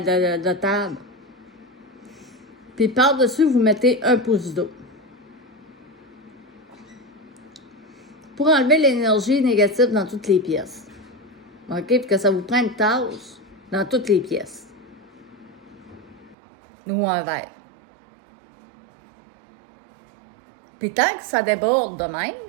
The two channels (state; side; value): drops out; left; at 16.4 s